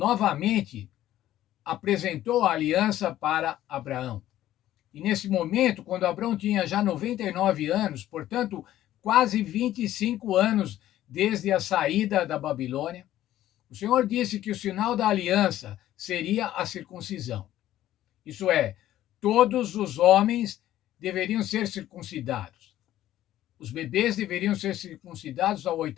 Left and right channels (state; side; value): quieter; right; 13.3 dB